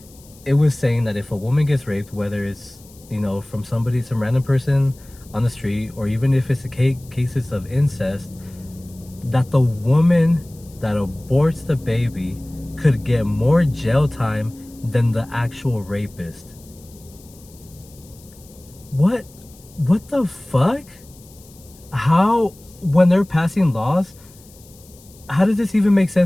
it was saying that if a woman gets raped, whether it's, from some random person on the street, or even if it's cases of incest, that the woman that aborts the baby could get more jail time than the actual rapist. What the fuck? How, when they're passing laws, how does this even make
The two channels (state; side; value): noise; left; hiss, 25 dB below the sound